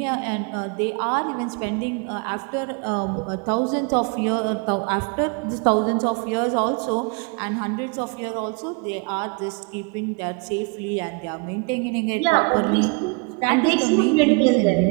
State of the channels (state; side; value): quieter; left; 32.5 dB